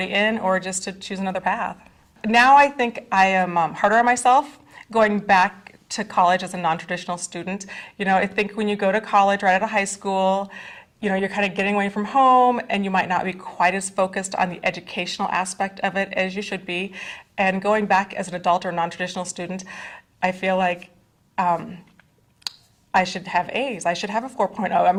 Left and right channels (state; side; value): identical; both; correlation 1.00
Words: in or just to choose another path. Now I think I am harder on myself going back to college as a non-traditional student. I think when you go to college right out of high school, you're kind of getting away from home and you might not be quite as focused on the educational aspect of it as you should be. And going back as an adult or non-traditional student, I feel like I should have A's. I should have a 4.0. I